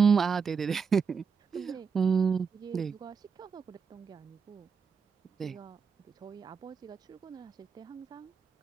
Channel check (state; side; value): quieter; left; 5.9 dB